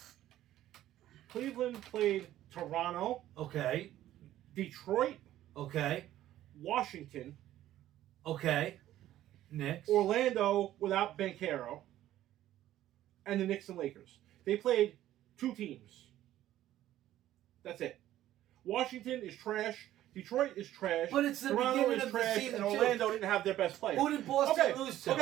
Cleveland played Toronto. Okay. Detroit. Okay. Washington. Okay. Knicks. Orlando without Banchero. And the Knicks and Lakers. They played 2 teams. That's it. Washington is trash. Detroit is trash. But it's the Toronto beginning is of the trash, season, and Orlando didn't have their best player. Who did Boston lose to?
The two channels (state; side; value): quieter; left; 13.4 dB